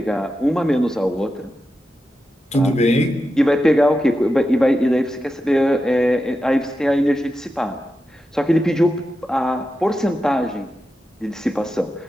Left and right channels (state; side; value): normal; both; correlation 0.90